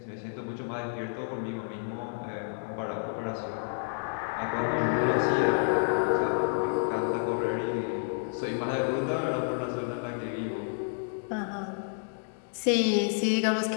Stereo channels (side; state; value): right; silent; digital silence